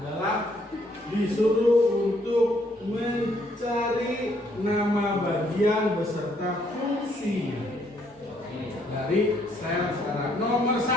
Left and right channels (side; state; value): both; normal; correlation 0.69